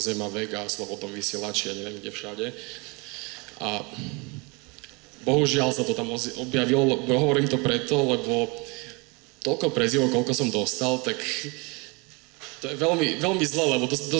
Vega, Slobodnom vysielači, ja neviem kde všade. A bohužiaľ sa to tam objavilo, hovorím to preto, lebo toľko prezivov, koľko som dostal, tak to je veľmi, veľmi zle, lebo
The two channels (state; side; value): quieter; left; 28.9 dB